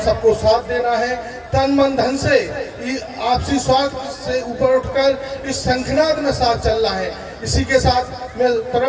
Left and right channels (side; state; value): both; identical; correlation 1.00